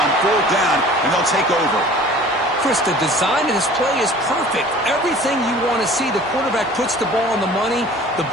fourth down, and they'll take over. Chris, the design of this play is perfect. Everything you want to see. The quarterback puts the ball on the money. The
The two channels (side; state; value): both; normal; correlation 0.46